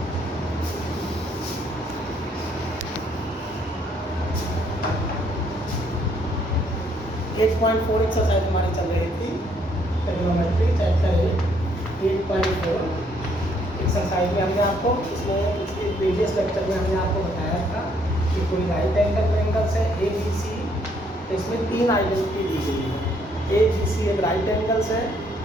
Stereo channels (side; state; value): both; normal; correlation 0.68